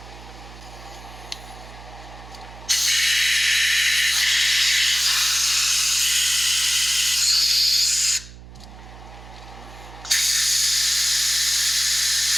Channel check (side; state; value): right; noise; hum, 17 dB below the sound